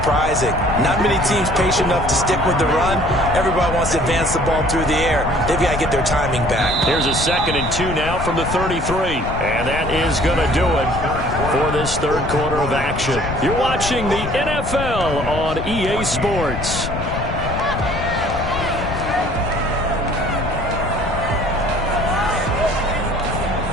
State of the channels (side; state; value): left; noise; rumble, 6 dB below the sound